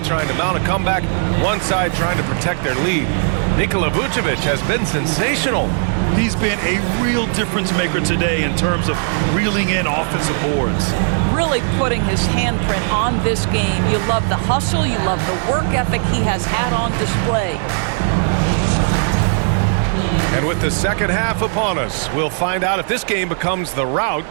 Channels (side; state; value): left; silent; 68 dB below the other